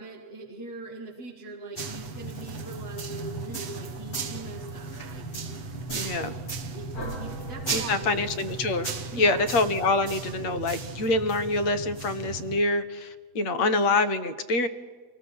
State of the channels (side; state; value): right; late; 8.0 ms